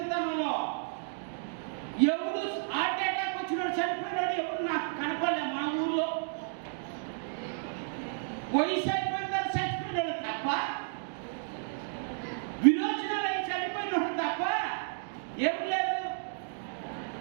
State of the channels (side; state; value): left; silent; digital silence